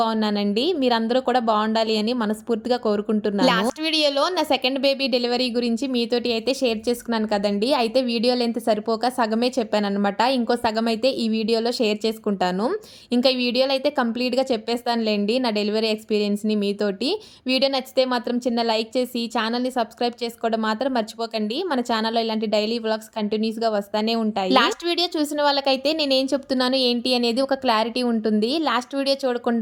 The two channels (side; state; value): both; identical; correlation 1.00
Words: మీరందరూ కూడా బాగుండాలి అని మనస్ఫూర్తిగా కోరుకుంటున్నాను. లాస్ట్ వీడియోలో నా సెకండ్ బేబీ డెలివరీ గురించి మీతోటి అయితే షేర్ చేసుకున్నాను కదండీ. అయితే వీడియో లెంత్ సరిపోక సగమే చెప్పాననమాట. ఇంకో సగం అయితే ఈ వీడియోలో షేర్ చేసుకుంటాను. ఇంకా ఈ వీడియోలో అయితే కంప్లీట్‌గా చెప్పేస్తానులెండి నా డెలివరీ ఎక్స్‌పీరియన్స్‌ని మీతోటి. వీడియో నచ్చితే మాత్రం చిన్న లైక్ చేసి ఛానెల్‌ని సబ్స్క్రైబ్ చేసుకోవడం మాత్రం మర్చిపోకండి. మన ఛానెల్‌లో ఇలాంటి డైలీ వ్లాగ్స్ కంటిన్యూస్‌గా వస్తానే ఉంటాయి. లాస్ట్ వీడియో చూసిన వాళ్ళకైతే నేనేం చెప్తున్నాను ఏంటి అనేది ఒక క్లారిటీ ఉంటుంది. లాస్ట్ వీడియో